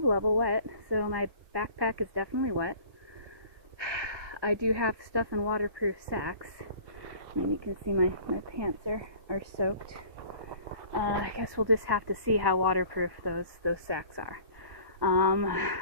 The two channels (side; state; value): left; late; 1.1 ms